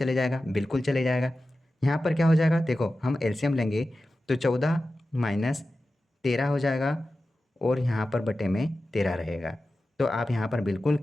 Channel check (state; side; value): normal; both; correlation 0.94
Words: जाएगा, बिल्कुल चले जाएगा। यहाँ पर क्या हो जाएगा? देखो हम एलसीएम लेंगे तो 14 माइनस 13 हो जाएगा, और यहाँ पर बटे में 13 रहेगा। तो आप यहाँ पर बिल्कुल